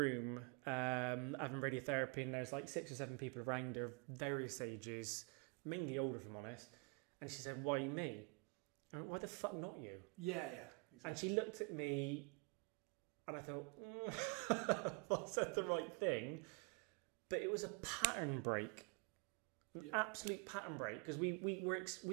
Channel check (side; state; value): left; quieter; 31.9 dB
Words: having radiotherapy, and there's like 6 or 7 people around her, various ages, mainly older if I'm honest, and she said, why me? I went, why the fuck not you? Yeah, exactly. And she looked at me, and I thought, I said the right thing. But it was a pattern break, an absolute pattern break, because